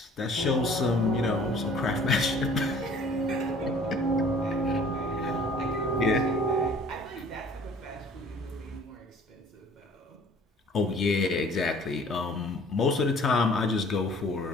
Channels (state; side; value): normal; both; correlation 0.52